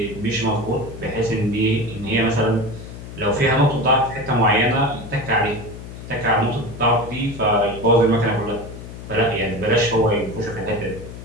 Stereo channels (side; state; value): left; noise; hum, 12 dB below the sound